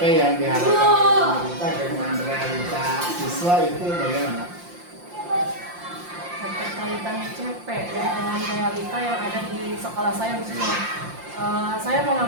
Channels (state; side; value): late; left; 5.7 ms